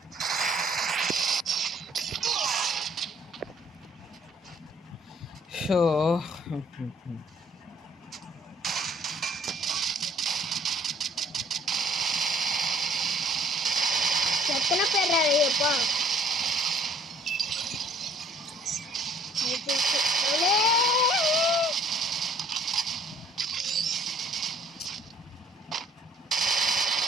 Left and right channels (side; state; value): both; normal; correlation 0.59